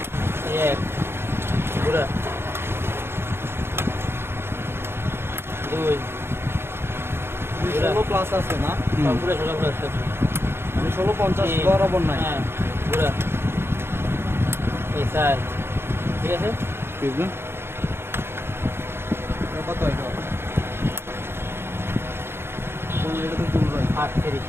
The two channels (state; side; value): late; left; 0.11 ms